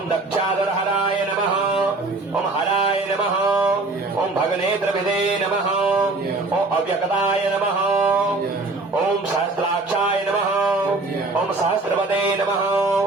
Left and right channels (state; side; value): quieter; left; 3.3 dB